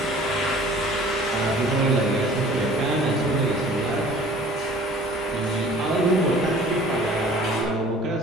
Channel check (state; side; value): normal; both; correlation 0.48